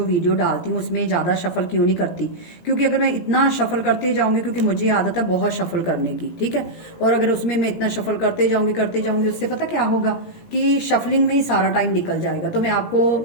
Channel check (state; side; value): late; right; 17 ms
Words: वीडियो डालती हूँ उसमें ज्यादा शफल क्यों नहीं करती? क्योंकि अगर मैं इतना शफल करते जाऊंगी, क्योंकि मुझे आदत है बहुत शफल करने की, ठीक है। और अगर उसमें मैं इतना शफल करते जाऊंगी उससे पता क्या होगा कि शफलिंग में ही सारा टाइम निकल जाएगा। तो मैं आपको